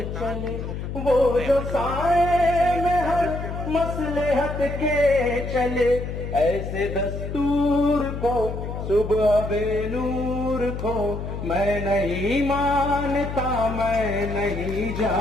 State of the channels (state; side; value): noise; left; hum, 6 dB below the sound